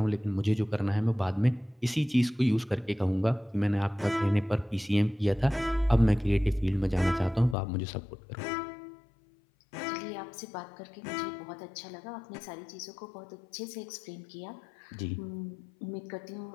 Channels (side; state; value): right; drops out; at 7.6 s